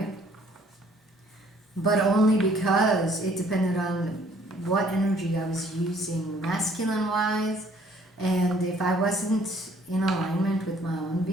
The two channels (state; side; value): normal; both; correlation 0.60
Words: but only because it depended on what energy I was using masculine wise, and if I wasn't in alignment with my own